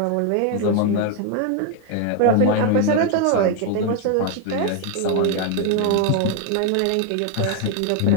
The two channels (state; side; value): different; both; correlation 0.01